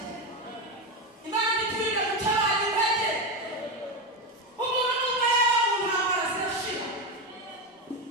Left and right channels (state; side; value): normal; both; correlation 0.14